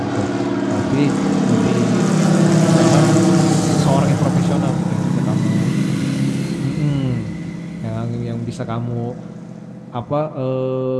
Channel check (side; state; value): both; identical; correlation 1.00